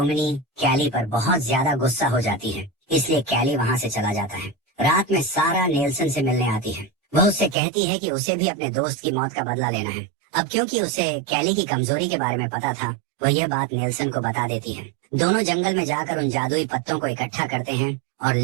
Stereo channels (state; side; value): drops out; left; at 7.6 s